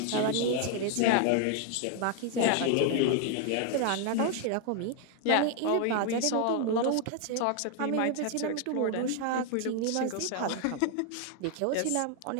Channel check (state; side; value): different; both; correlation 0.00